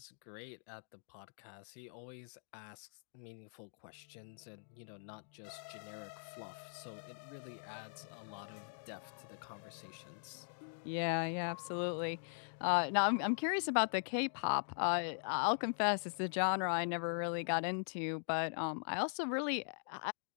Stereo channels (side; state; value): right; silent; digital silence